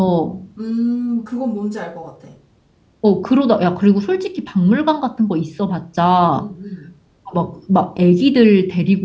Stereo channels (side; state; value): both; identical; correlation 1.00